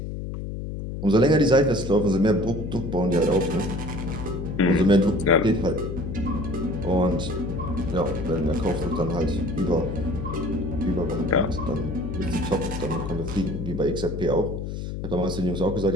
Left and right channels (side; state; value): left; noise; hum, 6 dB below the sound